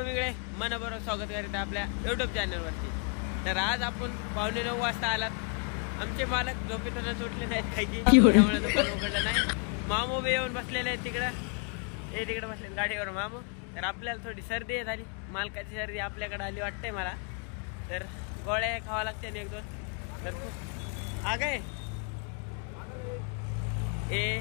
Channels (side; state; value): right; quieter; 38.0 dB